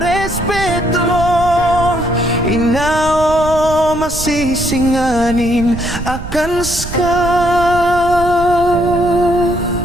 Inao masisinganin akan ska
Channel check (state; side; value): noise; right; rumble, 9 dB below the sound